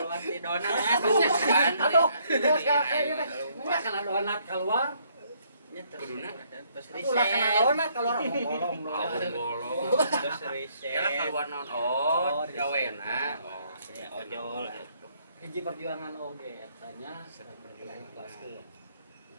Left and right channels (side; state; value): both; inverted; correlation -0.68